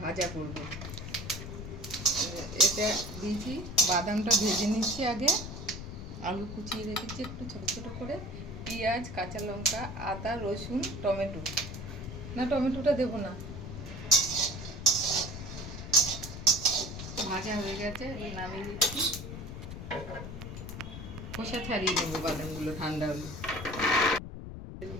ভাজা করব। এটা দিয়েছি, বাদামটা ভেজে নিচ্ছি আগে, আলু কুচিয়ে রেখেছি একটু ছোটো ছোটো করে, পেঁয়াজ, কাঁচা লঙ্কা, আদা, রসুন, টমেটো, না টমেটোটা দেবো না, ভাজা হয়ে গেছে, এবার নামিয়ে দিচ্ছি। খোসা ছাড়িয়ে নেবো বাদামগুলো ঠান্ডা হলে। তেল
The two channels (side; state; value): left; noise; rumble, 9 dB below the sound